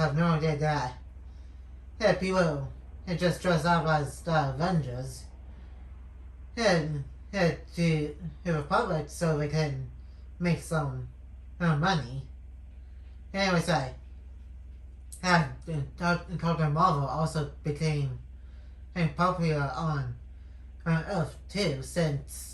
no idea that people just dress up as the Avengers and to the public so they can make some money. Anyways, Captain Marvel also became popular on Earth too,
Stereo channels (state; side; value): identical; both; correlation 1.00